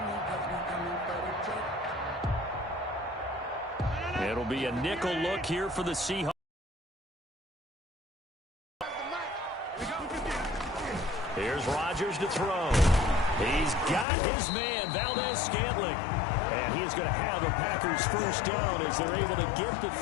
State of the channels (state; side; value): drops out; right; at 14.1 s